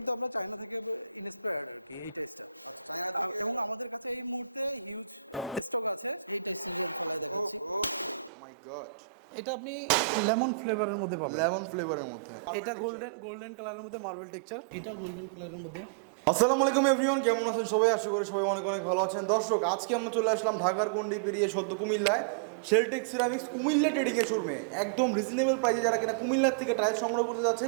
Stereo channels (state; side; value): drops out; left; at 8.3 s